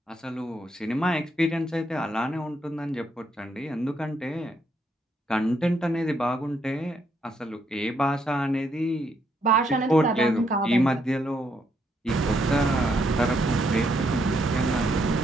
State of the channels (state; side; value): normal; both; correlation 0.75